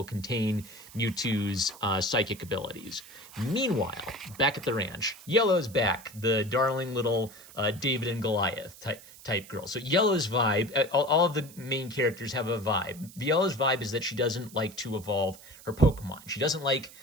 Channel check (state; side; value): noise; right; hiss, 19 dB below the sound